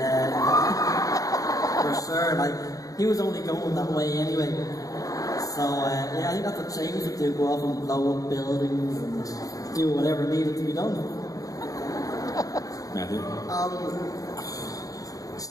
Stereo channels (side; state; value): right; late; 0.17 ms